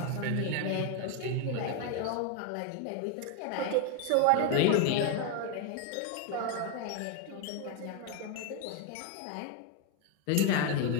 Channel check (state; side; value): different; both; correlation 0.01